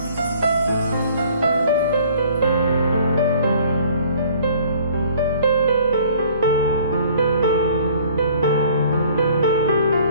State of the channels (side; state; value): both; inverted; correlation -0.54